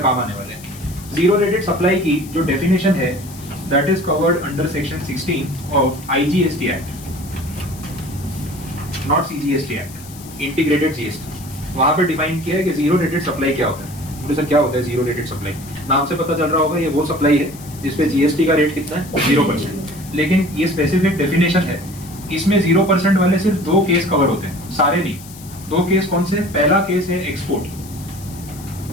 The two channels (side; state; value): left; noise; hiss, 18 dB below the sound